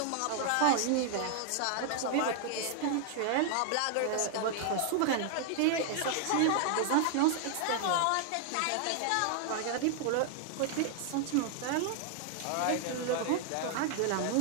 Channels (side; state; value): both; different; correlation 0.00